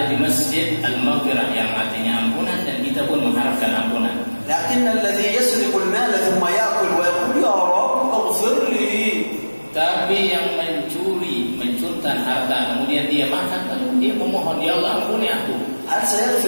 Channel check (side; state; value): both; inverted; correlation -1.00